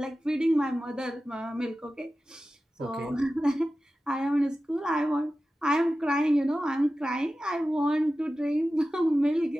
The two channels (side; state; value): both; normal; correlation 0.94